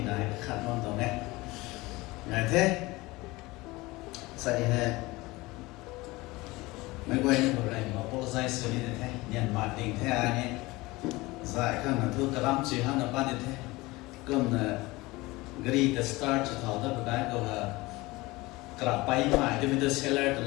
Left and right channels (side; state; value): right; quieter; 21.4 dB